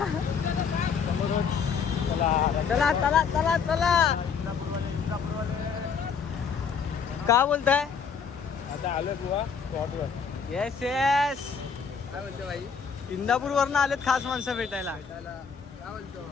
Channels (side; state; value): right; quieter; 6.2 dB